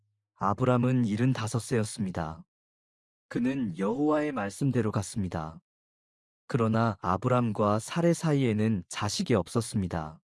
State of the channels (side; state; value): both; identical; correlation 1.00